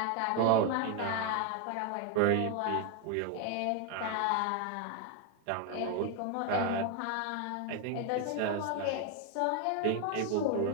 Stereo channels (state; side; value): different; both; correlation 0.01